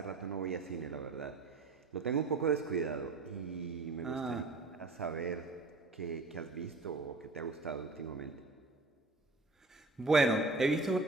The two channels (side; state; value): left; quieter; 3.4 dB